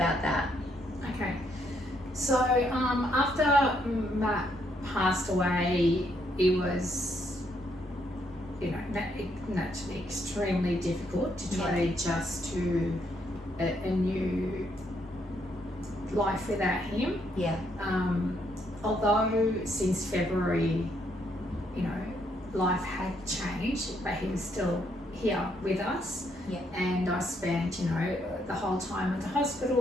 that. Okay, so after Matt passed away, it was, naturally extremely difficult to try to adjust to a new life without him. Yeah. Although since February, life had changed, but he was still here with us. Yeah. And I spent, the whole time at the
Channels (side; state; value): both; normal; correlation 0.74